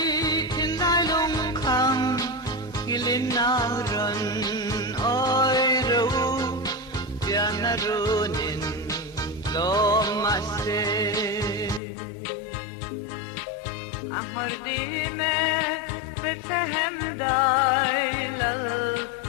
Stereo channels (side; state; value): right; drops out; at 11.8 s